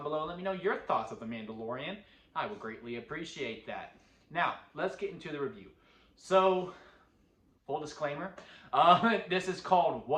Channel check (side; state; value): both; identical; correlation 1.00